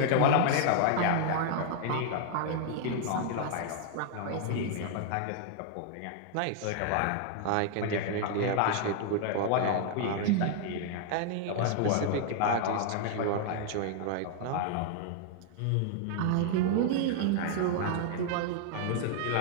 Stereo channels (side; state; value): both; different; correlation 0.00